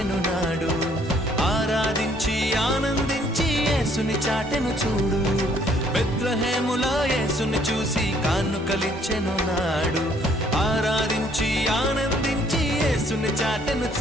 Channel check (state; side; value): normal; both; correlation 0.64